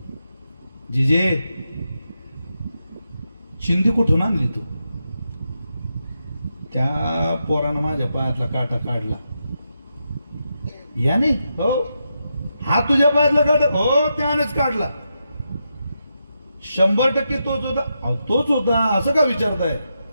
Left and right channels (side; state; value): both; inverted; correlation -0.85